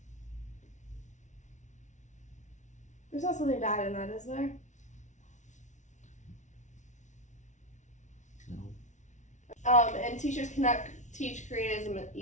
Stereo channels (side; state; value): right; late; 0.35 ms